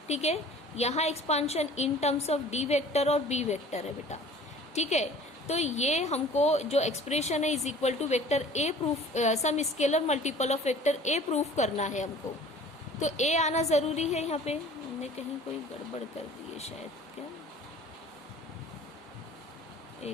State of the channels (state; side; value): normal; both; correlation 0.47